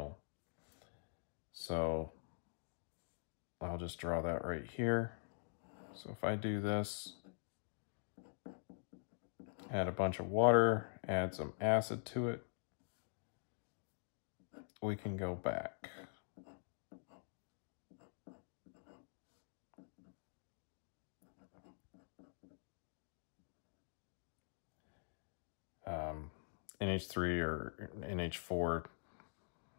So I'll just draw that right here. So if I do this, add a bunch of water, add some acid to it, we can go back. NH3 or NH4,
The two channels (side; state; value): right; silent; digital silence